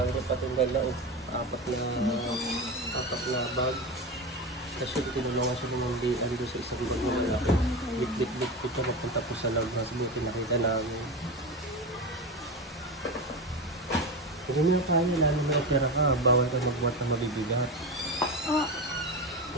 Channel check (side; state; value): both; normal; correlation 0.21